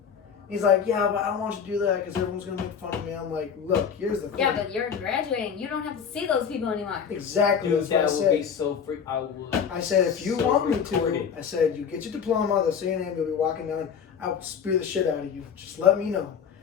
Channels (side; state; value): right; quieter; 7.2 dB